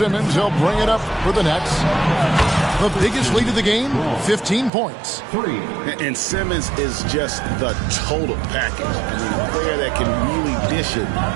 He'll bring it up for the Nets. The biggest lead of the game, 15 points. And Simmons is just the total package. I mean, a player that can really dish it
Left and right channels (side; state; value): left; drops out; at 4.7 s